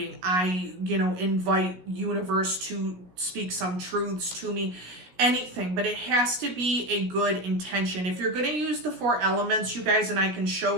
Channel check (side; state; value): left; late; 16 ms